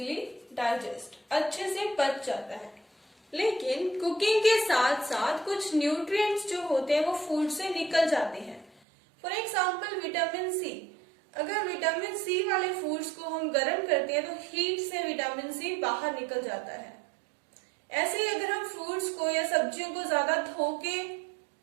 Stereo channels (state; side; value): drops out; left; at 8.8 s